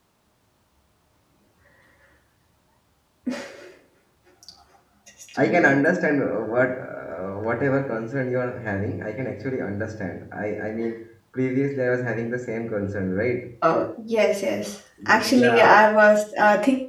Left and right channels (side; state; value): both; identical; correlation 1.00